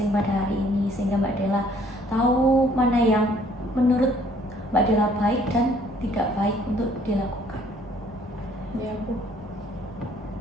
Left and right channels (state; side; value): normal; both; correlation 0.60